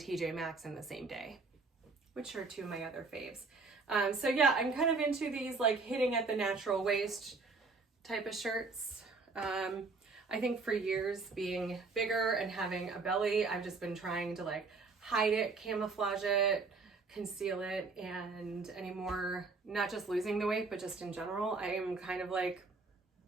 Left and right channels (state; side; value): quieter; left; 4.1 dB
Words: Maxx in the same day, which are 2 of my other faves. So yeah, I'm kind of into these like hitting at the natural waist type of shirts. I think for years being bigger and having a belly, I've just been trying to like hide it, camouflage it, conceal it, and anymore, not just losing the weight, but just in general, I am kind of like,